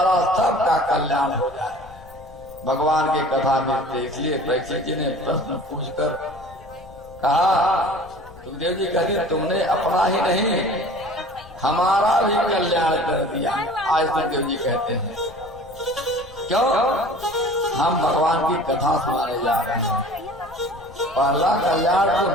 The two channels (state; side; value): noise; left; rumble, 20 dB below the sound